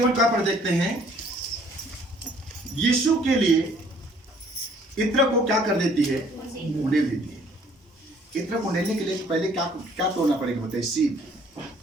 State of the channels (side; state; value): both; normal; correlation 0.59